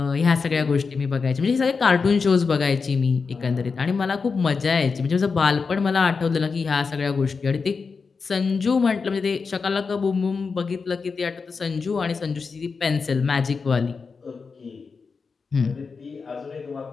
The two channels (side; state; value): right; quieter; 4.9 dB